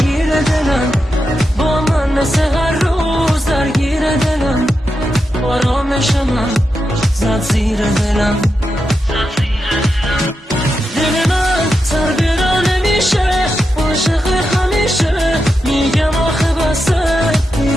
دلم با من مثل هر روز درگیر دلم آرامش من زد زیر دلم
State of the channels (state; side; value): normal; both; correlation 0.87